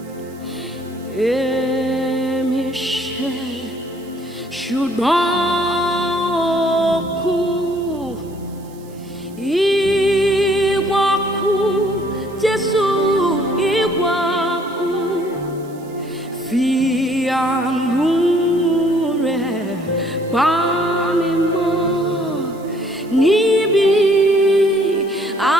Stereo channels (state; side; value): noise; right; hiss, 26 dB below the sound